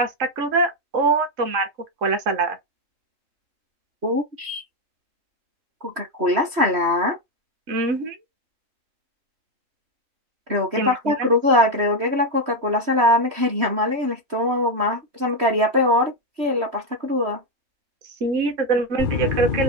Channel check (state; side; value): late; left; 3.1 ms